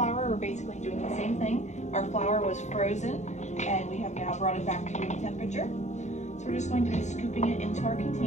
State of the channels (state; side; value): late; right; 0.34 ms